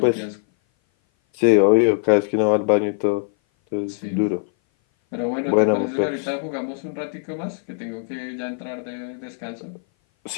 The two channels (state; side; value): silent; right; 57 dB below the other